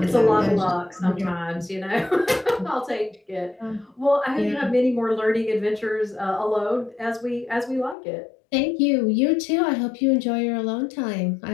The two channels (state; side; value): drops out; right; at 8.0 s